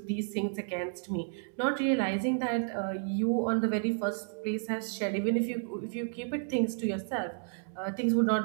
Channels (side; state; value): left; silent; digital silence